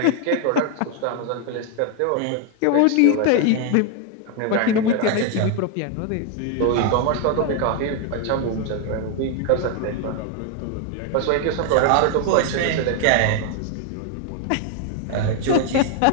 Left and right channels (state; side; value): different; both; correlation 0.00